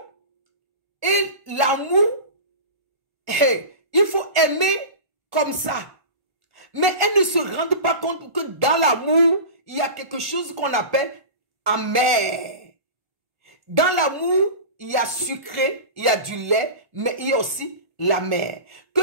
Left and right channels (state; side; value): late; left; 1.4 ms